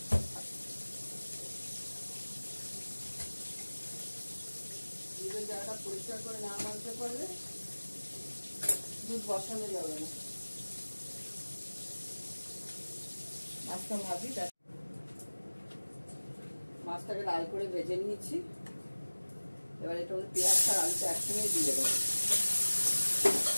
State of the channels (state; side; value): inverted; both; correlation -1.00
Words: দুধের জায়গাটা পরিষ্কার করে না মানতে পারলে দুধ বসানো যাবে না। মাছটা ভাবি, মাছটাকে লাল করে ভেজে নিয়েছি। এবার এটা পেঁয়াজটা আর আলুটা একসঙ্গে দিয়ে দেবো।